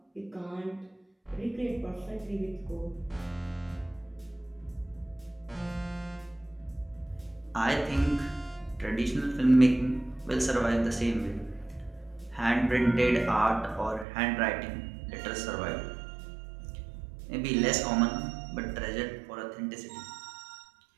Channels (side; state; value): left; drops out; at 14.1 s